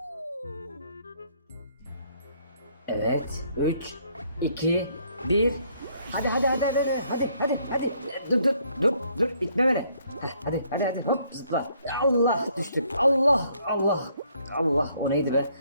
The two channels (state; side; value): inverted; both; correlation -0.67